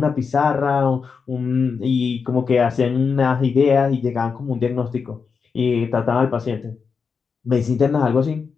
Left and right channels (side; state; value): right; quieter; 5.5 dB